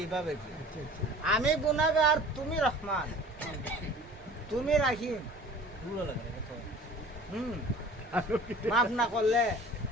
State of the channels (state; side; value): normal; both; correlation 0.45